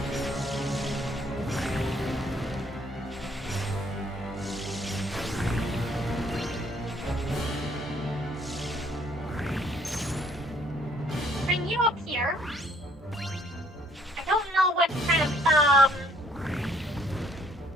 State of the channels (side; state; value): both; normal; correlation 0.63